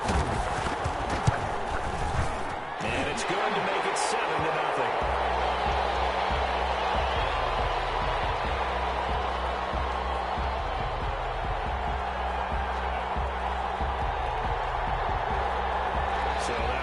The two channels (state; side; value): identical; both; correlation 1.00